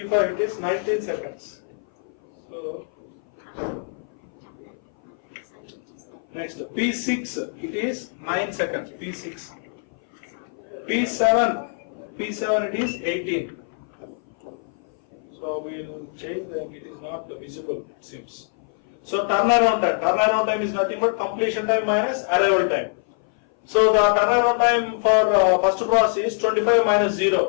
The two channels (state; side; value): silent; right; 58 dB below the other